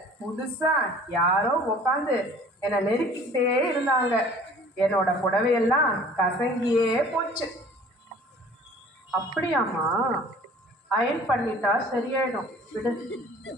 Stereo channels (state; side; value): normal; both; correlation 0.49